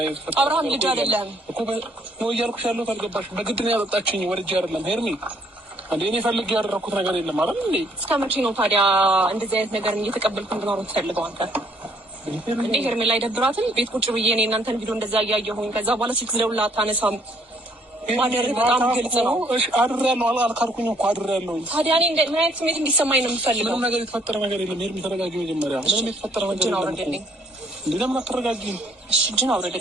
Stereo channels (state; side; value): normal; both; correlation 0.65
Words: አብርሃም ልጅ አይደለም እኮ ነው እያልኩሽ ያለሁት አልገባሽ? በግድ ነው ያጠጣችኝ፣ ወልጄ አይደለም ሄርሜን። እንዴ እኔ ፈልጌ ያደረኩት ነገር የለም አይደል እንዴ? እስከ መቼ ነው ታዲያ እንደዚህ አይነት ነገር እየተቀበልኩ እንድኖር ትፈልገው አንተ? እንዴ ሄርሜን ላይ ደብራትም ቤት ቁጭ ብዬ እኔ እናንተን ቪዲዮ እንደዛ እያየሁኝ ከዛ በኋላ ስልክ ደውላ አታነሳም። ማደር በጣም ግልጽ ነው። እሺ አድሬያለሁ አልካልኩኝ እኮ አድሬያለሁ። ታዲያ እኔ ምን አይነት ስሜት እንዲሰማኝ ነው የምፈልገው? ምንም ነገር የተፈጠረ ነገር የለም። ሄርሜን ተረጋጊ መጀመሪያ። ምንም የተፈጠረ ነገር የለም። እንዴ ለምን አትረጋጊም? እሺ እጅን